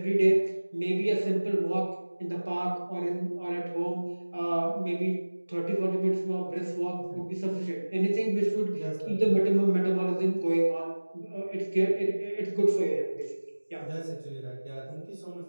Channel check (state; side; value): inverted; both; correlation -1.00